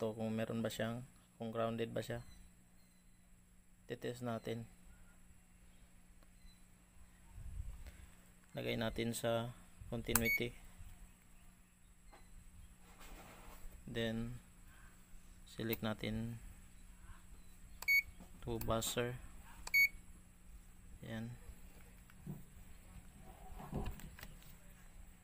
kung meron ba siyang, kung grounded ba siya. Test natin. Lagay natin sa continuity, then select natin to buzzer. Yan.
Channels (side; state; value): both; identical; correlation 1.00